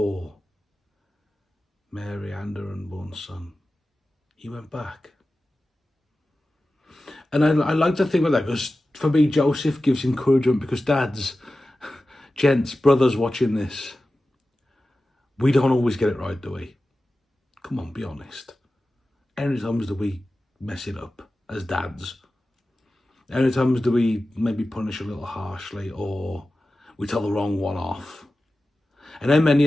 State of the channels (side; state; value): both; normal; correlation 0.94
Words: Mary and her unborn son, he went back. And I like to think about that because for me, Joseph gives encouragement because dads, gents, brothers watching this, we don't always get it right, do we? Come on, be honest. How many times do we mess it up as dads? How many times do we maybe punish a little harshly or we tell the wrong one off? And how many